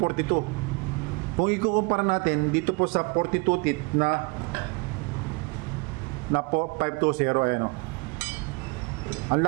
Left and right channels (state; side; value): quieter; left; 28.4 dB